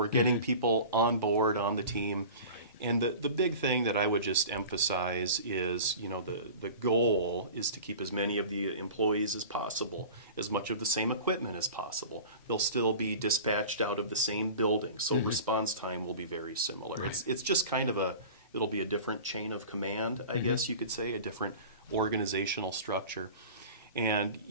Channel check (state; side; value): inverted; both; correlation -0.38